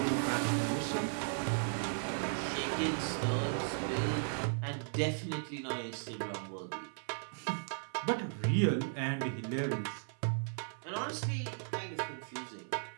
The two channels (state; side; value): silent; left; 54 dB below the other